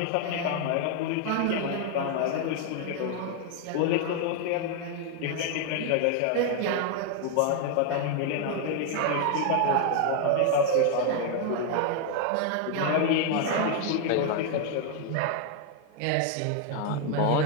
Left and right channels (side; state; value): both; different; correlation 0.00